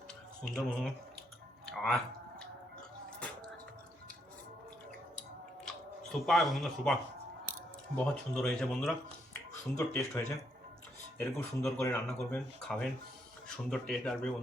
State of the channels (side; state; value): both; normal; correlation 0.75